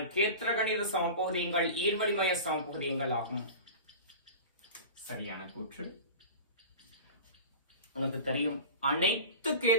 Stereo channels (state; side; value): inverted; both; correlation -0.33